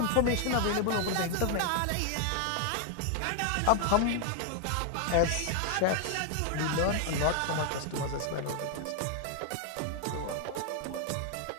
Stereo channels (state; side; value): different; both; correlation 0.00